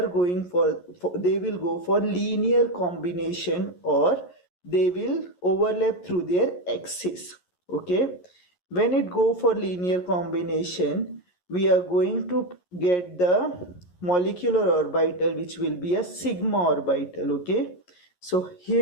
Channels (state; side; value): late; right; 11 ms